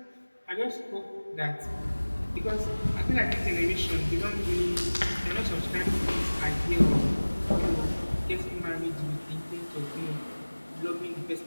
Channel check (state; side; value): inverted; both; correlation -1.00